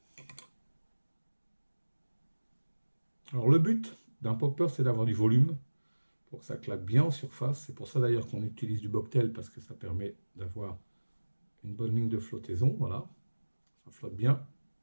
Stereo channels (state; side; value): inverted; both; correlation -1.00